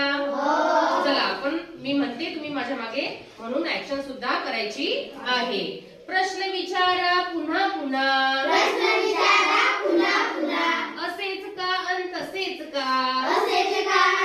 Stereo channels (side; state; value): both; identical; correlation 1.00